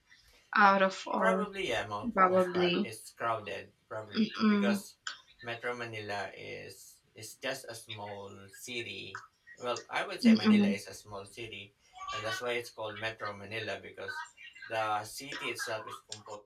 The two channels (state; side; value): identical; both; correlation 1.00